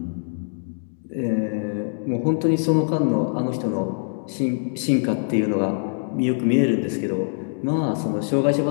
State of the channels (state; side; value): silent; right; digital silence